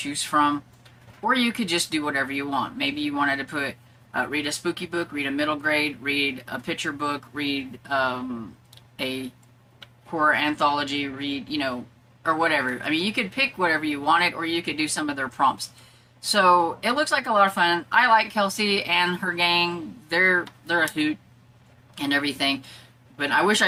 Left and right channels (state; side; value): identical; both; correlation 1.00